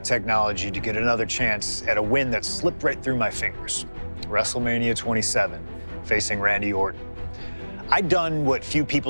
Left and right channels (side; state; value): both; inverted; correlation -1.00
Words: technology to get another chance at a win that slipped right through my fingers. WrestleMania 27, facing Randy Orton. I'd done what few